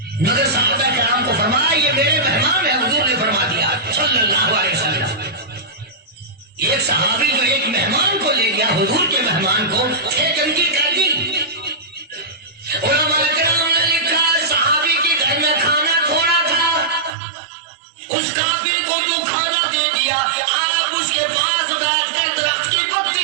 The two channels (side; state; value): left; drops out; at 17.1 s